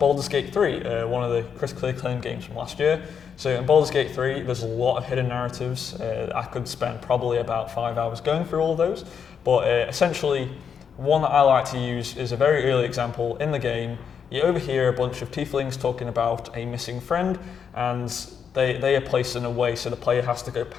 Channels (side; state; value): right; quieter; 7.1 dB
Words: Gate 3, one of the critically acclaimed games from last year. So in Baldur's Gate 3, there's a lot of hidden narratives. I could spend probably about 5 hours going through all of those, but essentially, one that I like to use is a very early example in the game. You overhear a bunch of tieflings talking about a missing friend, and they are placed in a way so the player has to go